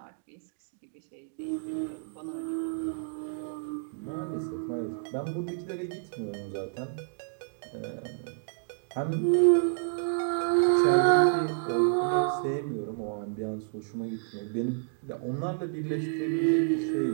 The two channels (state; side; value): silent; left; digital silence